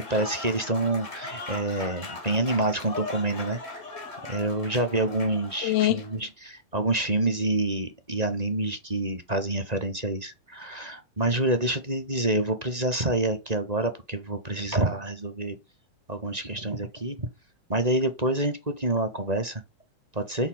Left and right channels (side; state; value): left; late; 1.9 ms